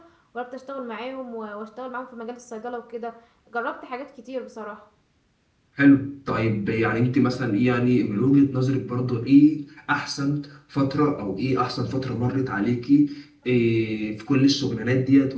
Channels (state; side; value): identical; both; correlation 1.00